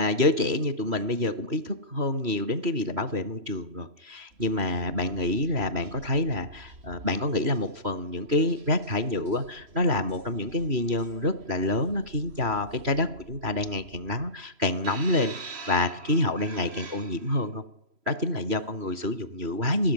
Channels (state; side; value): late; left; 3.0 ms